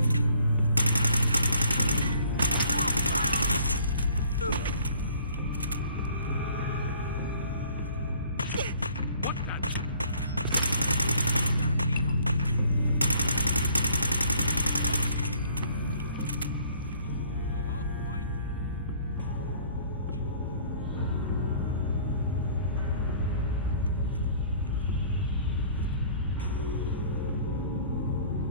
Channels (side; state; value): both; inverted; correlation -0.57